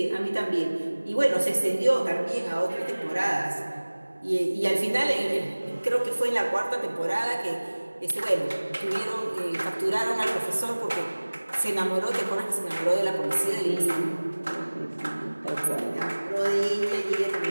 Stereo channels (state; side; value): inverted; both; correlation -1.00